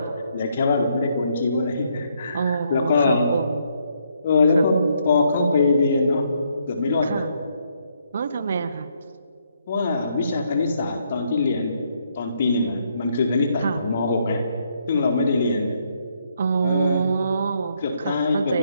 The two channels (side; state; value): both; inverted; correlation -0.73